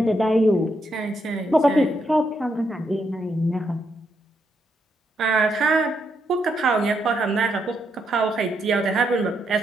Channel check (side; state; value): both; normal; correlation 0.79